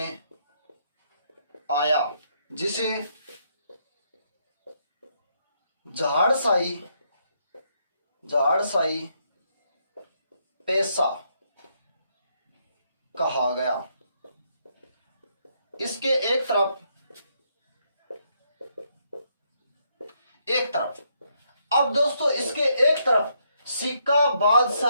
आया जिसे झाड़शाही, झाड़शाही पैसा कहा गया। इसके एक तरफ, एक तरफ, अब दोस्तों इसके एक तरफ सिक्का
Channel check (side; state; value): both; inverted; correlation -0.75